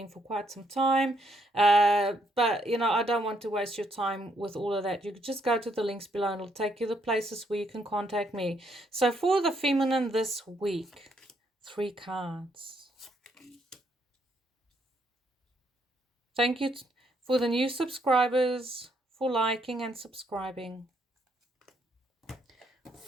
for quite some time, but you know, I don't want to waste your time with all of that. You could just go to the links below and it'll take you the places where you can contact me. So for the feminine this week, 3 cards. Thank you for the new subscribers, for liking and subscribing.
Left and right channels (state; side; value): normal; both; correlation 0.73